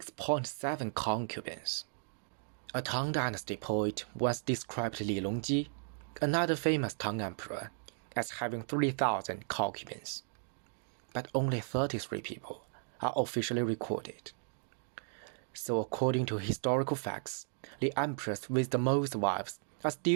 concubines. A Tang Dynasty poet once described Li Longji, another famous Tang emperor, as having 3,000 concubines. But only 33 people are officially recorded. So according to historical facts, the emperors with the most wives are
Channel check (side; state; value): left; silent; digital silence